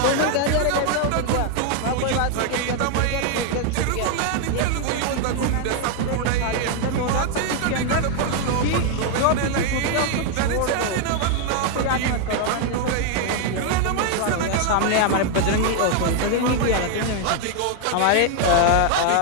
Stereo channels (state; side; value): different; both; correlation 0.00